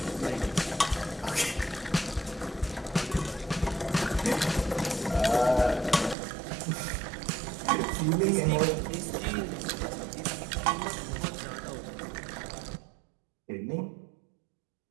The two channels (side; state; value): left; drops out; at 6.2 s